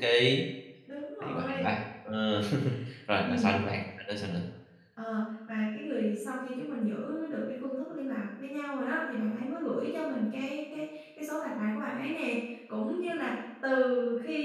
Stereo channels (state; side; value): identical; both; correlation 1.00